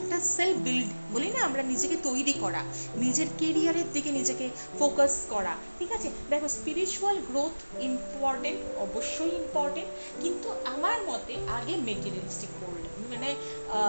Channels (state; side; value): inverted; both; correlation -1.00